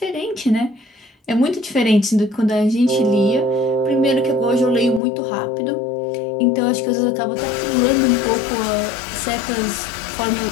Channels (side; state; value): right; drops out; at 5.0 s